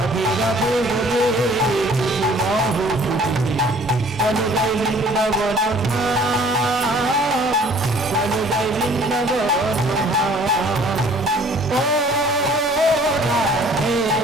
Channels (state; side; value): normal; both; correlation 0.54